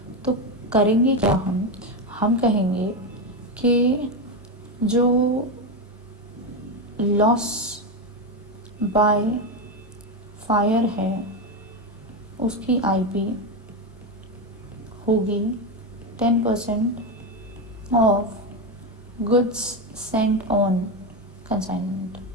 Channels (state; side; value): normal; both; correlation 0.12